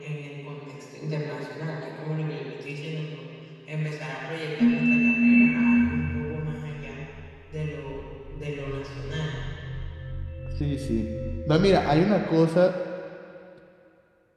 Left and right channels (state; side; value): identical; both; correlation 1.00